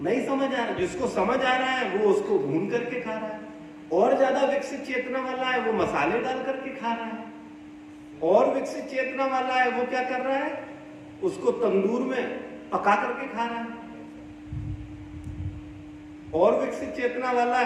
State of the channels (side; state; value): both; identical; correlation 1.00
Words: नहीं समझ आ रहा। जिसको समझ आ रहा है वो उसको भून करके खा रहा है। और ज्यादा विकसित चेतना वाला है वो मसाले डाल करके खा रहा है। और विकसित चेतना वाला है वो क्या कर रहा है? उसको तंदूर में पका करके खा रहा है। और विकसित चेतना वाला